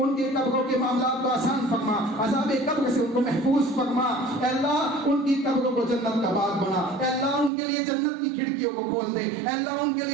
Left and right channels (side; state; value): left; drops out; at 7.5 s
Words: قبروں کے معاملات کو آسان فرما، عذاب قبر سے ان کو محفوظ فرما۔ اے اللہ ان کی قبروں کو جنت کا باغ بنا، اے اللہ ان کے لیے جنت کی کھڑکیوں کو کھول دے، اے اللہ ان کے